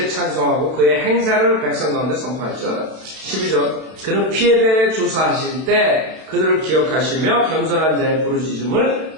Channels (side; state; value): left; late; 32 ms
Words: 찬송하고 그의 행사를 백성 가운데 선포할지어다. 12절 그는 피에 대해 조사하실 때 그들을 기억하시며 겸손한 자의 부르짖음을